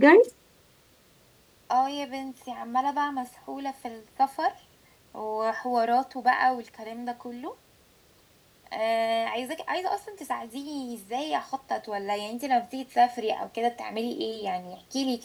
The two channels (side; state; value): both; identical; correlation 1.00